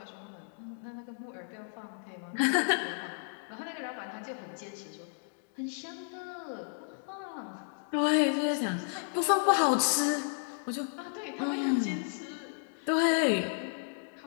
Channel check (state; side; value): silent; right; digital silence